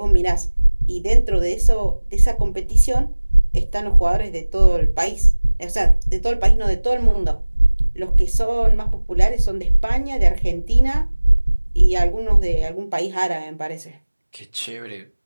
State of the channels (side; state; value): both; inverted; correlation -1.00